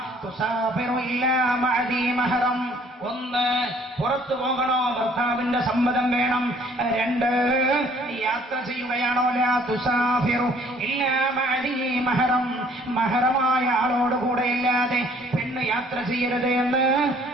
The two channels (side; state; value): both; normal; correlation 0.58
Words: തുസാഫിറു ഇല്ലാ മഅദി മഹറം. 1, പുറത്തു പോകണോ ഭർത്താവിന്റെ സമ്മതം വേണം. 2, യാത്ര ചെയ്യുകയാണോ ലാ തുസാഫിറു ഇല്ലാ മഅദി മഹറം. മഹറമായ ആളോട് കൂടെ ഇല്ലാതെ പെണ്ണ് യാത്ര ചെയ്യരുത് എന്ന്